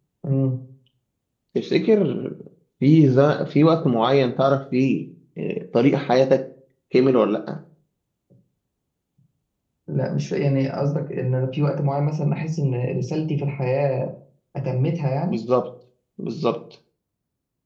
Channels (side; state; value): both; identical; correlation 1.00